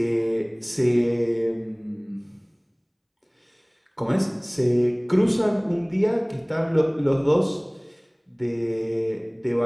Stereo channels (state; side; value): identical; both; correlation 1.00